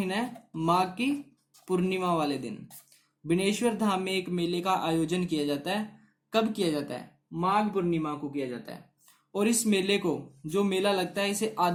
है, माघ की पूर्णिमा वाले दिन बनेश्वर धाम में एक मेले का आयोजन किया जाता है। कब किया जाता है? माघ पूर्णिमा को किया जाता है। और इस मेले को, जो मेला लगता है, इसे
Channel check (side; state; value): both; identical; correlation 1.00